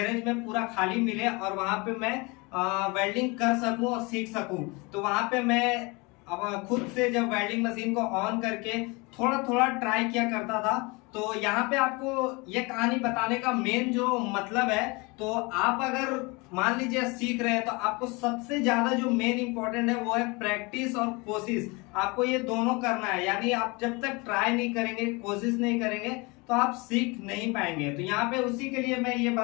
में पूरा खाली मिले और वहां पे मैं वेल्डिंग कर सकूं और सीख सकूं। तो वहां पे मैं अब खुद से जब वेल्डिंग मशीन को ऑन करके थोड़ा थोड़ा ट्राई किया करता था। तो यहाँ पे आपको ये कहानी बताने का मेन जो मतलब है, तो आप अगर मान लीजिए सीख रहे हैं तो आपको सबसे ज्यादा जो मेन इंपॉर्टेंट है वो है प्रैक्टिस और कोशिश। आपको ये दोनों करना है, यानी आप जब तक ट्राई नहीं करेंगे, कोशिश नहीं करेंगे, तो आप सीख नहीं पाएंगे। तो यहाँ पे उसी के लिए मैं ये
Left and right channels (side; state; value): right; quieter; 26.8 dB